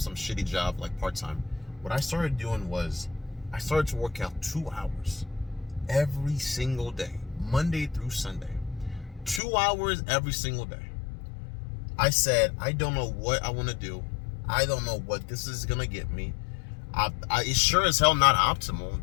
job, like part-time. What I started doing was, I started to work out 2 hours every single day, Monday through Sunday. 2 hours every single day. I said, I don't know what I want to do. I don't know what this is going to get me. It's sure as hell not optimal.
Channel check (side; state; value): right; drops out; at 9.4 s